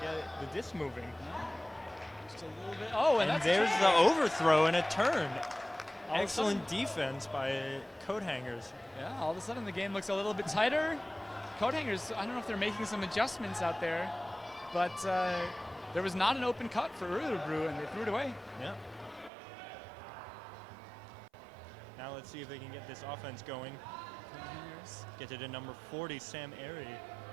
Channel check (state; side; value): drops out; left; at 19.3 s